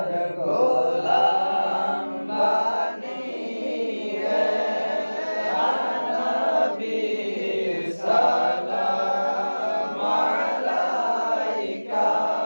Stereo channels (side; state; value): both; inverted; correlation -1.00